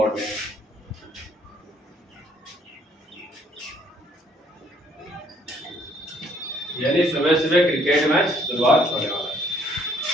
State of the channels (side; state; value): both; normal; correlation 0.64